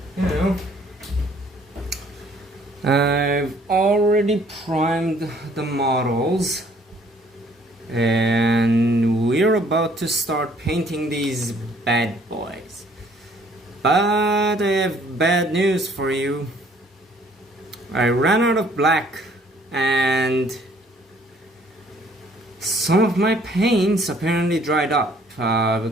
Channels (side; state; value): both; normal; correlation 0.60